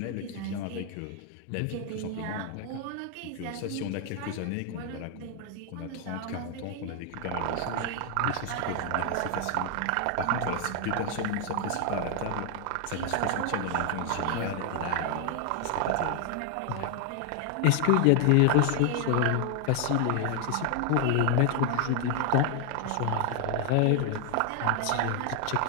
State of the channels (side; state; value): both; different; correlation 0.00